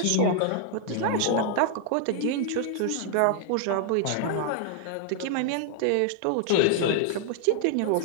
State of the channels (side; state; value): both; different; correlation -0.01